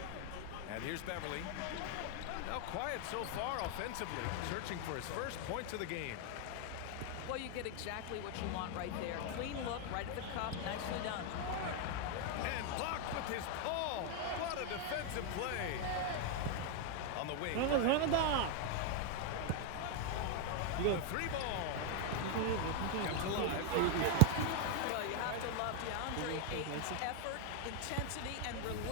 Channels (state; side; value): different; both; correlation 0.00